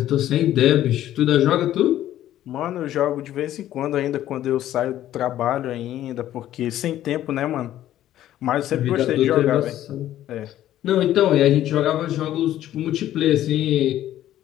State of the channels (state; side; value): quieter; right; 12.8 dB